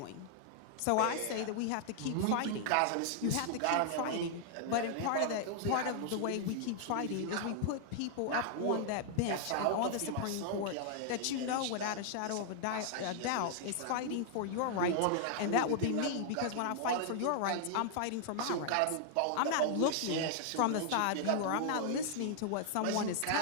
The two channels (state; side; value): different; both; correlation -0.01